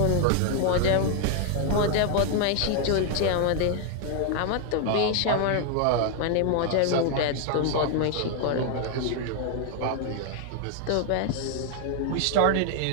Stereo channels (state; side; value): different; both; correlation 0.00